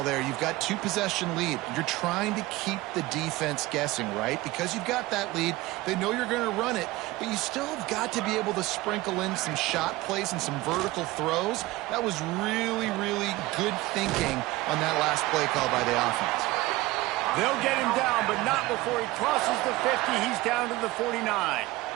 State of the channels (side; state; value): left; quieter; 19.3 dB